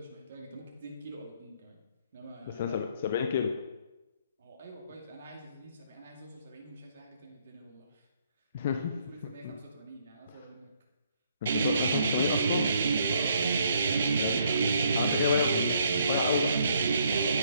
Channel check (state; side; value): inverted; both; correlation -0.68